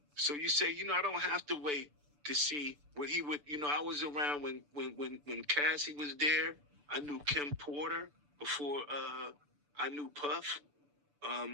So you say, I don't have to wait to see what he would, I was around when Cassie was there. I knew Kim Porter before I knew Puff.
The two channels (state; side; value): late; left; 6.9 ms